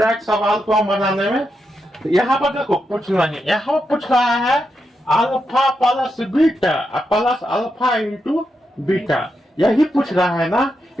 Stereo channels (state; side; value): normal; both; correlation 0.85